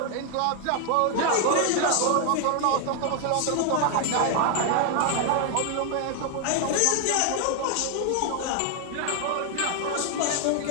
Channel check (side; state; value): both; different; correlation 0.00